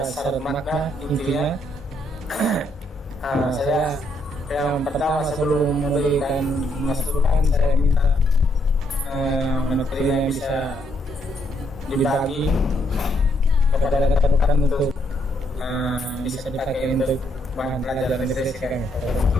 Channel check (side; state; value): both; normal; correlation 0.73